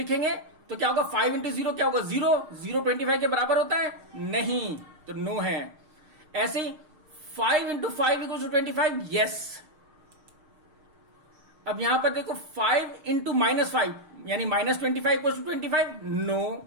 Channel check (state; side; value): late; left; 6.5 ms